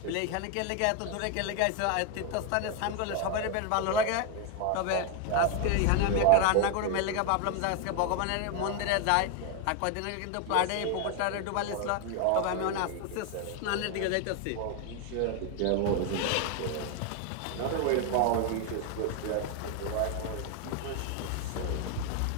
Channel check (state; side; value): different; both; correlation 0.01